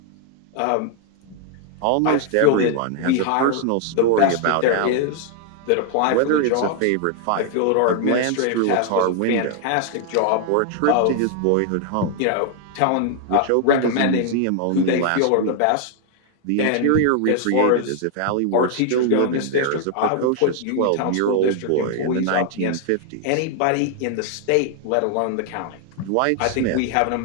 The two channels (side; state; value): both; different; correlation 0.00